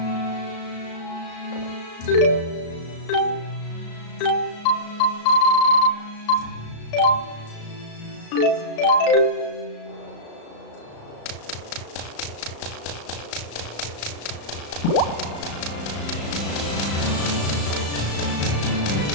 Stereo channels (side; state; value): right; late; 35 ms